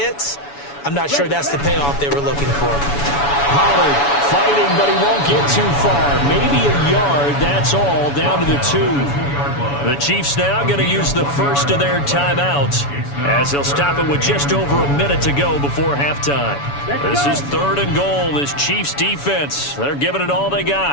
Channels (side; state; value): right; late; 7.0 ms